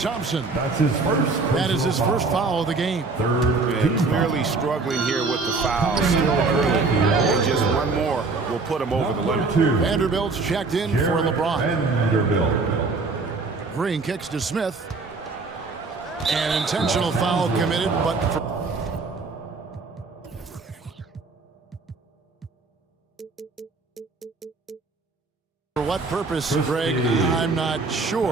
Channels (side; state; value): left; quieter; 3.9 dB